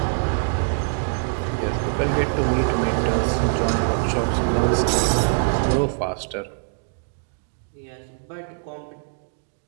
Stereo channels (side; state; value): left; silent; digital silence